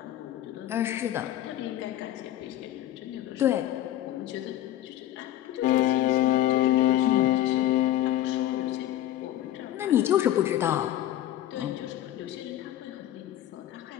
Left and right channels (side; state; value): right; quieter; 13.1 dB